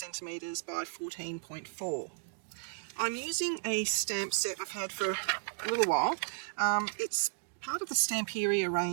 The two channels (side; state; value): left; silent; digital silence